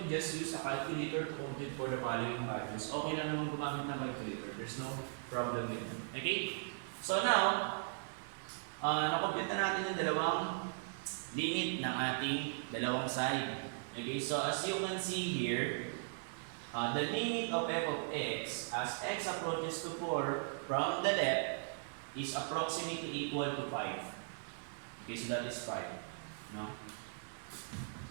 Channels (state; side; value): silent; left; digital silence